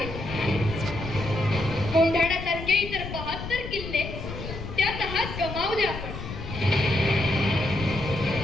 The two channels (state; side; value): noise; left; rumble, 8 dB below the sound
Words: कोंढाण्यासारखे इतर 72 किल्ले त्या तहात गमावले आपण.